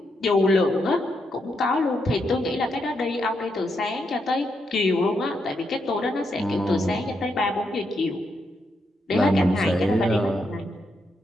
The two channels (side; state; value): both; normal; correlation 0.81